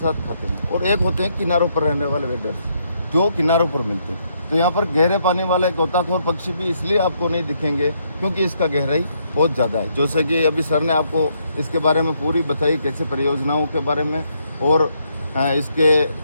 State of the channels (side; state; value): both; inverted; correlation -0.74